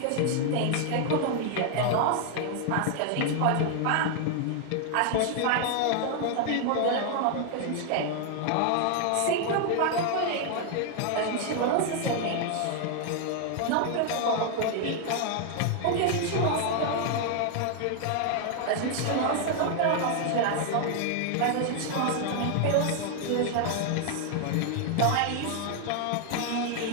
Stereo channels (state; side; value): different; both; correlation 0.00